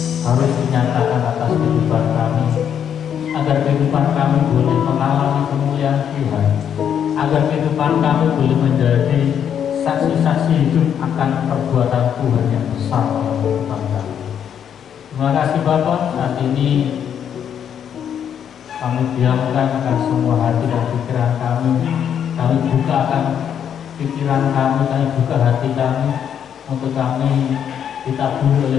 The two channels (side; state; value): right; quieter; 8.7 dB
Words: harus dinyatakan atas kehidupan kami, agar kehidupan kami boleh mengalami kemuliaan Tuhan, agar kehidupan kami boleh menjadi saksi-saksi hidup akan perbuatan Tuhan yang besar dalam kehidupan kami. Terima kasih Bapak, saat ini kami diamkan akan semua hati dan pikiran kami bukakan pikiran kami buka hati kami untuk kami ditaburi